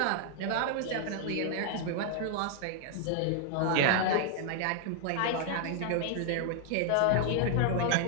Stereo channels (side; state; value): both; different; correlation 0.00